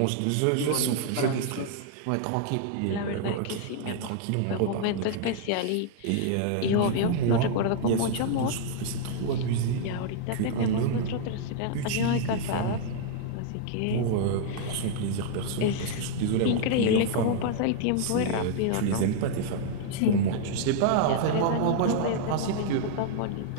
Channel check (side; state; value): both; different; correlation 0.00